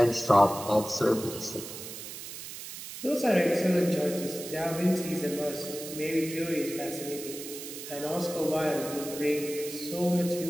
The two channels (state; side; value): noise; right; hiss, 10 dB below the sound